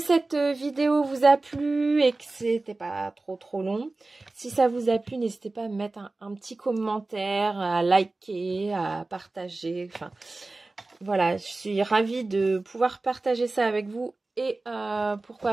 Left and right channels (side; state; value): left; quieter; 3.2 dB